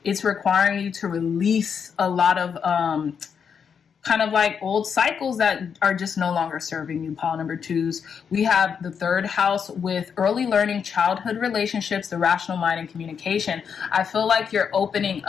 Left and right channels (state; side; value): quieter; right; 6.9 dB